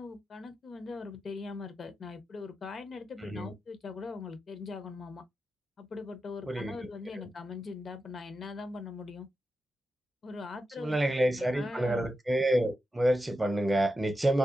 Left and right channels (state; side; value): normal; both; correlation 0.89